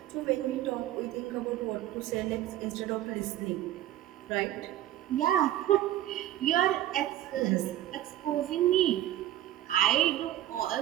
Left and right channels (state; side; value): quieter; left; 13.3 dB